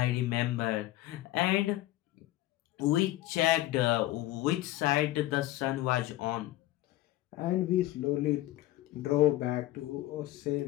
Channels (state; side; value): quieter; right; 16.0 dB